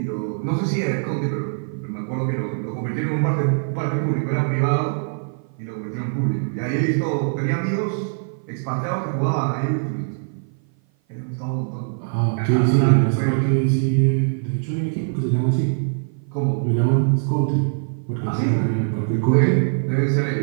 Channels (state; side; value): silent; left; 56 dB below the other